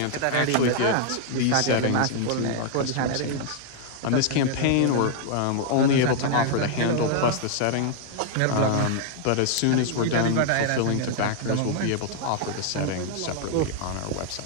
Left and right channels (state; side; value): different; both; correlation -0.01